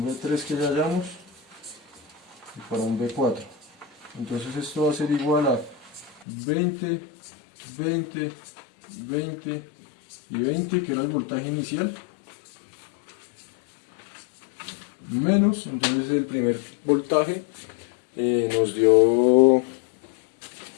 B3 que ya hallamos, y para un B4. Entonces esto va a ser igual a 20, 20 20 y 20, que era el voltaje inicial, menos, entonces el primer voltaje nos dio, el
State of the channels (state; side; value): drops out; right; at 6.2 s